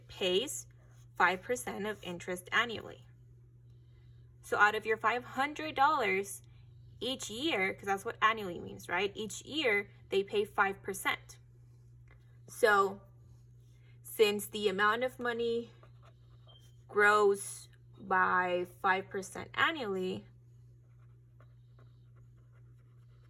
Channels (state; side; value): identical; both; correlation 1.00